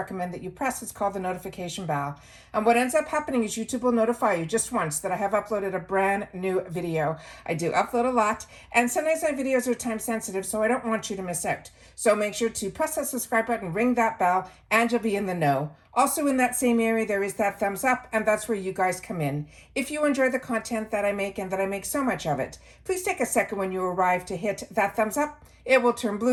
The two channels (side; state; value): both; identical; correlation 1.00